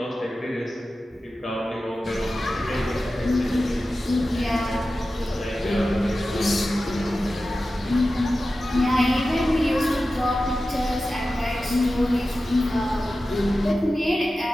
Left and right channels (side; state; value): both; normal; correlation 0.94